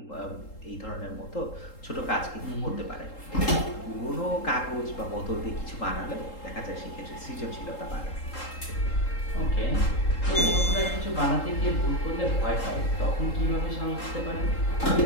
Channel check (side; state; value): right; late; 3.8 ms